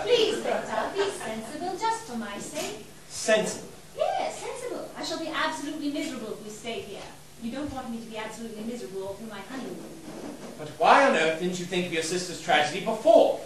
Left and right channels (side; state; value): both; identical; correlation 1.00